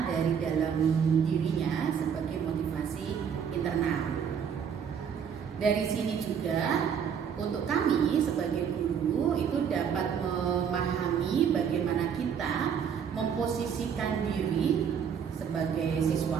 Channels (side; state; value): left; quieter; 7.6 dB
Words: dari dalam dirinya sebagai motivasi internal. Dari sini juga untuk kami sebagai guru itu dapat memahami bagaimana kita memposisikan diri sebagai